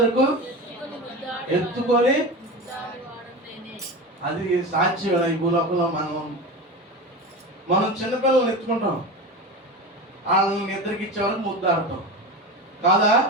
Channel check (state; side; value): normal; both; correlation 0.26